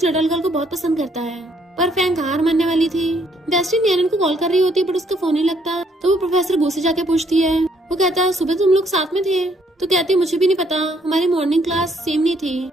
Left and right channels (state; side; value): normal; both; correlation 0.68